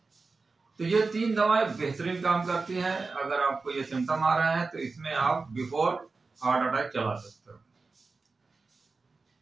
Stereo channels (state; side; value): quieter; left; 4.0 dB